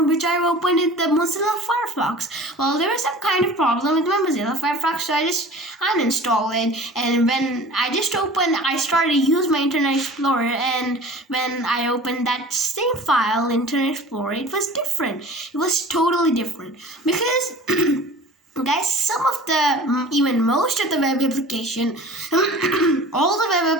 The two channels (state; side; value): normal; both; correlation 0.42